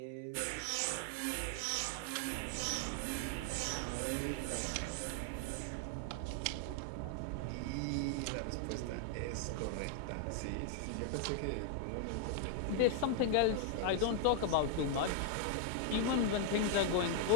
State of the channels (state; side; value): different; both; correlation 0.00